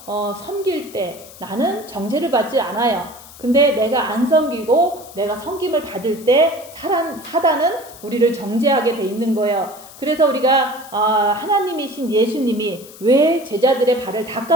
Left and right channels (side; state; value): left; noise; hiss, 19 dB below the sound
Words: 섬길 때 나는 정죄를 받지 않아요. 근데 내가 안 섬기고 내가 섬김을 받을 때 사단은 우리를 정죄하게 돼 있는 거예요. 그래서 우리가 하나님이신 예수님이 왜 제자들의 발을